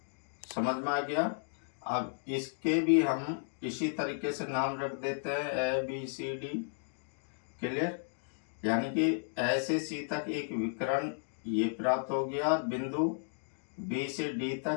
समझ में आ गया। अब इसके भी हम इसी तरीके से नाम रख देते हैं, A B C D. Clear, यानी कि ए से सी तक एक विकर्ण ये प्राप्त हो गया, बिंदु बी से डी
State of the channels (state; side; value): silent; right; digital silence